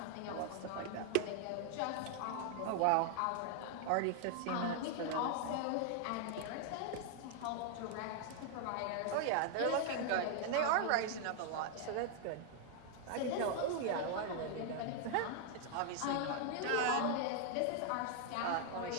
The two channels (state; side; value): different; both; correlation 0.00